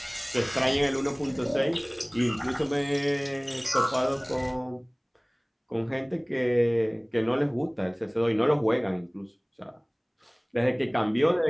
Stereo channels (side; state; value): both; identical; correlation 1.00